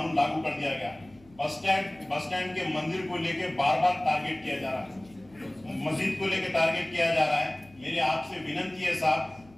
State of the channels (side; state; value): left; noise; hum, 27 dB below the sound